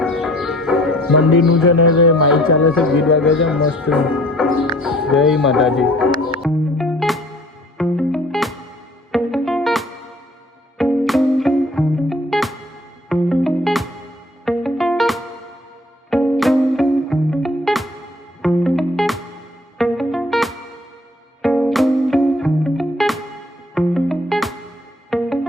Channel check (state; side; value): normal; both; correlation 0.54